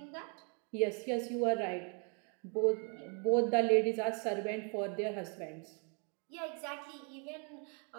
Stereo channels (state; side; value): quieter; left; 38.8 dB